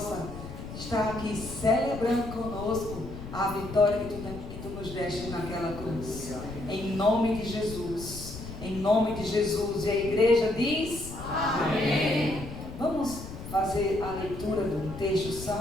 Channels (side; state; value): left; noise; rumble, 11 dB below the sound